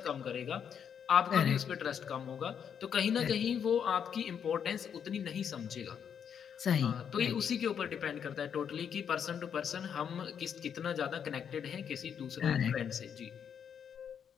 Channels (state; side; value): quieter; right; 7.9 dB